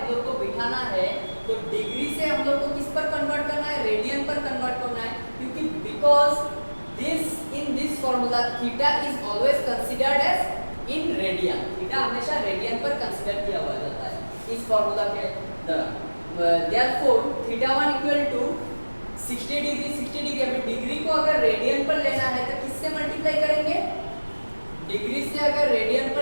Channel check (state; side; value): inverted; both; correlation -1.00